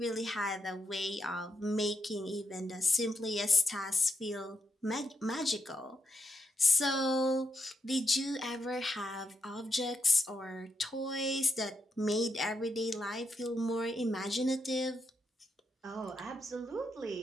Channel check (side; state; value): both; normal; correlation 0.82